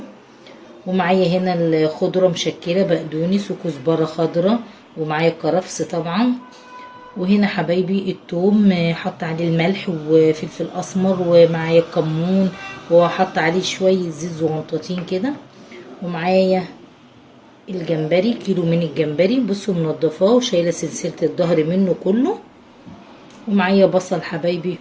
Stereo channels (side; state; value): both; identical; correlation 1.00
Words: ومعايا هنا الخضرة مشكلة بقدونس وكزبرة خضرة، ومعايا الكرفس طبعا، وهنا حبايبي التوم حط عليه الملح وفلفل اسمر، ومعايا الكمون وحط عليه شويه زيت زغنطاطين كده، ومعايا الجمبري كيلو من الجمبري بصوا منضفاه وشايله سلسله الظهر منه كله، ومعايا بصل حبايبي